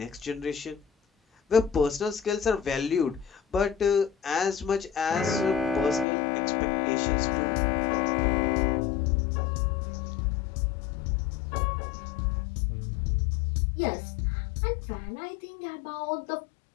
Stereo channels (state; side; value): drops out; right; at 6.1 s